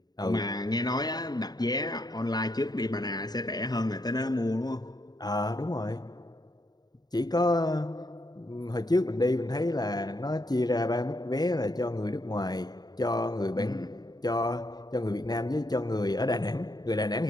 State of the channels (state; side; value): late; right; 0.19 ms